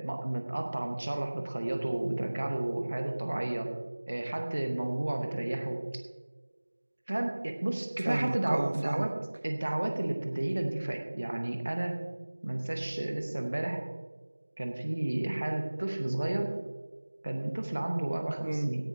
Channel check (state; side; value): inverted; both; correlation -1.00